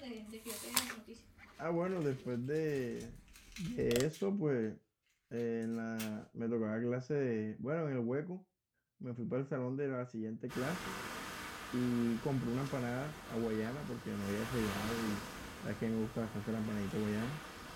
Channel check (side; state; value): both; identical; correlation 1.00